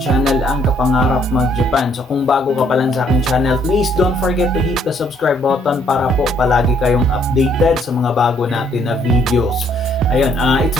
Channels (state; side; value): normal; both; correlation 0.67